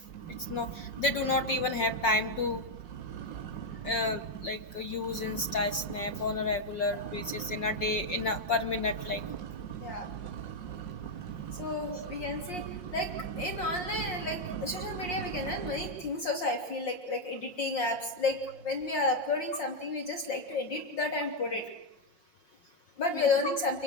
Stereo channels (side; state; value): right; late; 5.6 ms